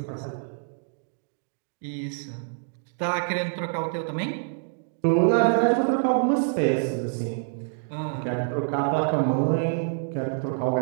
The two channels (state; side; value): silent; left; digital silence